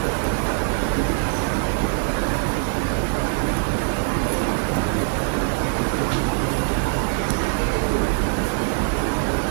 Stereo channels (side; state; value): left; quieter; 39.8 dB